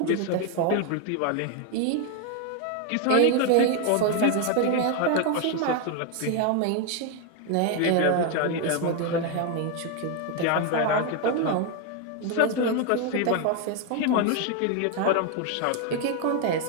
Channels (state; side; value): different; both; correlation 0.01